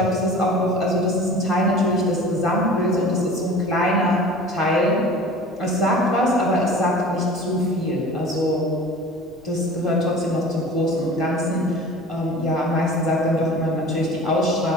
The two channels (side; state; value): both; normal; correlation 0.41